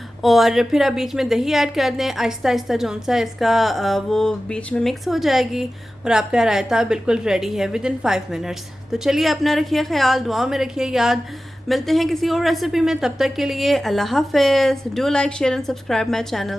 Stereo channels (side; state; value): both; normal; correlation 0.95